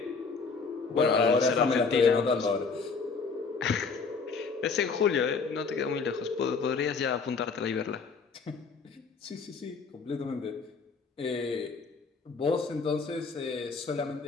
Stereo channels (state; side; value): quieter; right; 4.9 dB